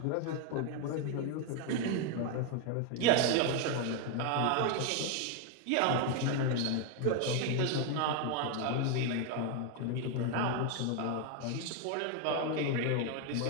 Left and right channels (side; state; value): both; different; correlation 0.01